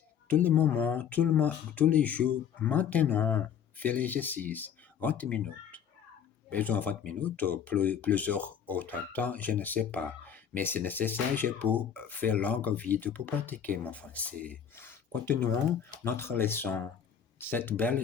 tous les moments, tous les jours, maintenant, faire l'exercice, 20 minutes. Besoin de 20 minutes ou plusieurs autres temps, je ne sais pas. Mais c'est nécessaire pour faire longue vidéo pour pratiquer mon français. Continuons notre leçon. Cette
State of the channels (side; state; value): right; quieter; 8.2 dB